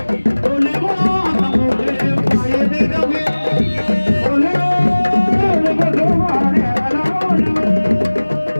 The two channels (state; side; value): inverted; both; correlation -1.00